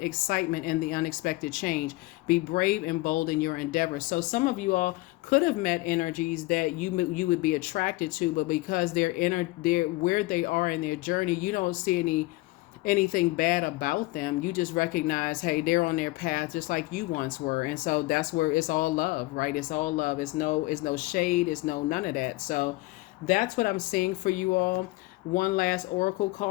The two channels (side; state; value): right; quieter; 21.0 dB